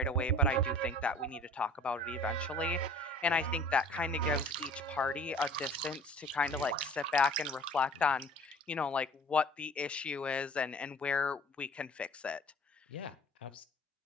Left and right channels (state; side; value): normal; both; correlation 0.47